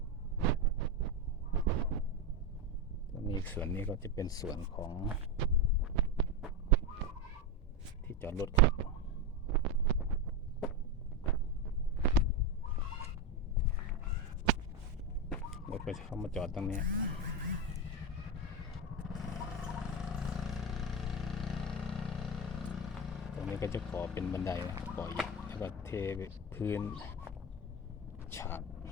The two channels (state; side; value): normal; both; correlation 0.15